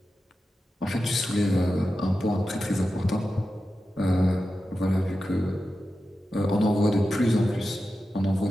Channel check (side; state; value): both; normal; correlation 0.92